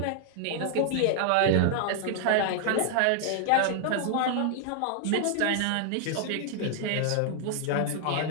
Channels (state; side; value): different; both; correlation 0.00